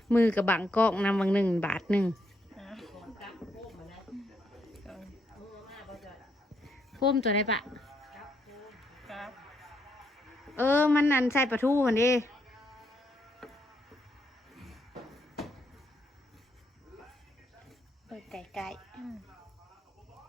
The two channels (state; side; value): normal; both; correlation 0.76